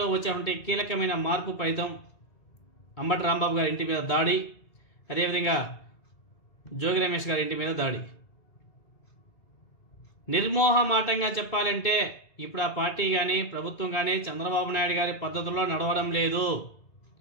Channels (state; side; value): late; right; 2.2 ms